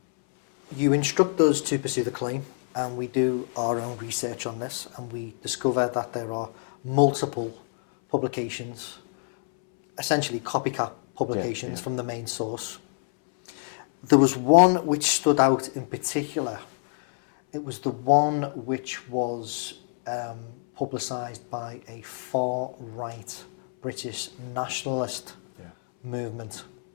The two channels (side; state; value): right; silent; 60 dB below the other